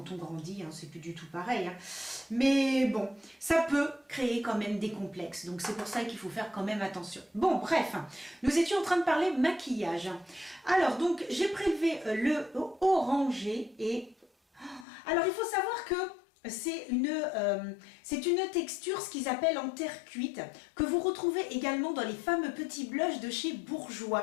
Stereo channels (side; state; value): right; drops out; at 14.9 s